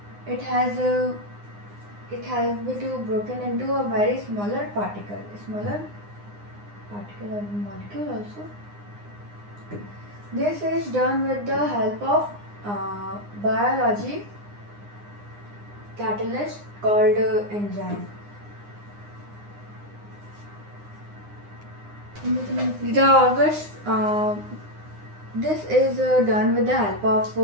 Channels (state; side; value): late; left; 9.7 ms